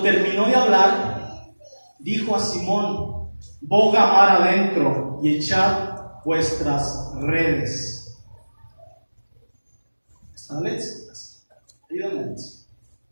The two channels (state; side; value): inverted; both; correlation -1.00